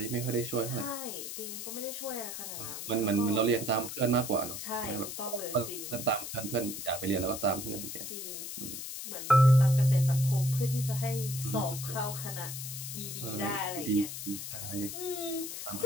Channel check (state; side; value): noise; left; hiss, 7 dB below the sound